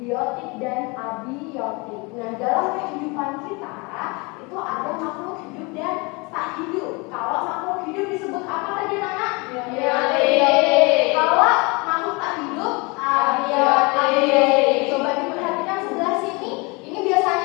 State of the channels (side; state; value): right; quieter; 28.0 dB